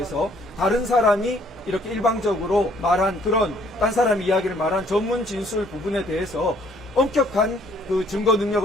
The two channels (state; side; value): normal; both; correlation 0.62